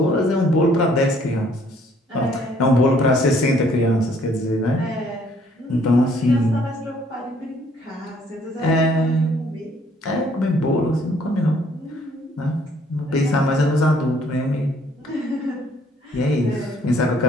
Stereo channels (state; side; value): normal; both; correlation 0.62